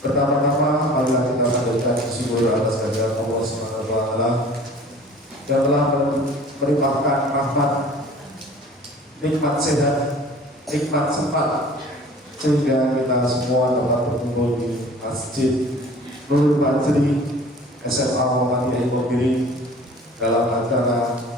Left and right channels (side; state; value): both; normal; correlation 0.47